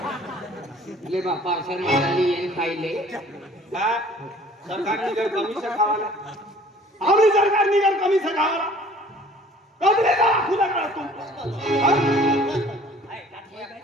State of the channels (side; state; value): both; normal; correlation 0.52